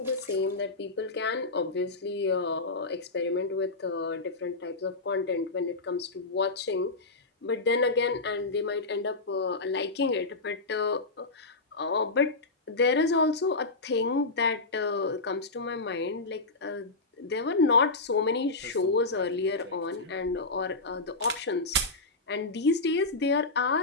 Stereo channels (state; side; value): quieter; right; 3.4 dB